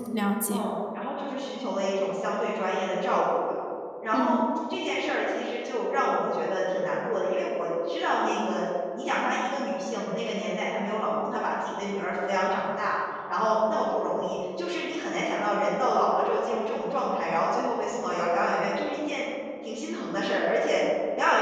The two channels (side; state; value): both; identical; correlation 1.00